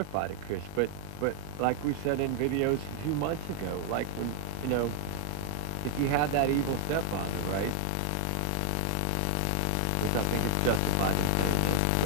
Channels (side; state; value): both; different; correlation 0.00